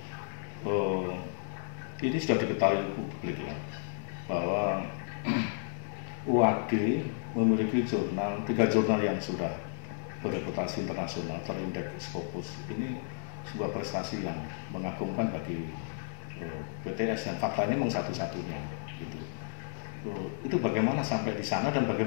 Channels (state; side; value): silent; right; digital silence